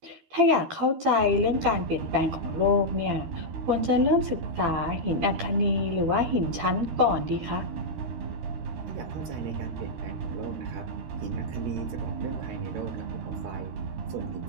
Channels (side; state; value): left; late; 13 ms